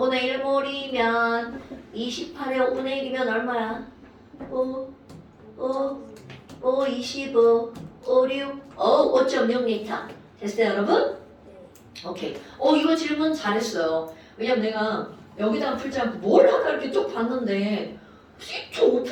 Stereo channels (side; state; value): both; identical; correlation 1.00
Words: 1몰이면 28에 5분의 1이면 얼마야? 5, 25, 5, 6, 5.6리터. 됐어요, 여러분? 오케이. 이거 질문 잘했어요. 왜냐면 내가 여기다가 풀지 않고 뭘 하다 이렇게 쭉 봤는데